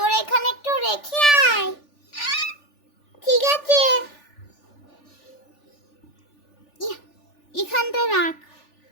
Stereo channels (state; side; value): late; right; 3.4 ms